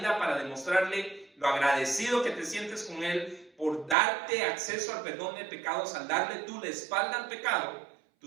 para demostrarle lo agradecido que te sientes con Él por darte acceso al perdón de pecados, al darle tú la espalda al pecado,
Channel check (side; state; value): left; drops out; at 4.0 s